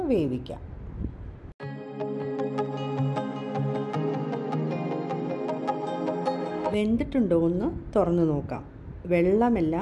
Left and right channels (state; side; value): identical; both; correlation 1.00